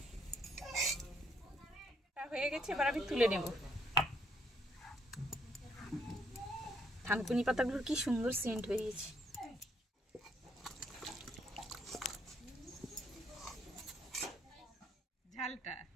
হয়ে গেছে, এবার আমি তুলে নেব। থানকুনি পাতাগুলোর কি সুন্দর সেন্ট বেরিয়েছে। ঝালটা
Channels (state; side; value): normal; both; correlation 0.70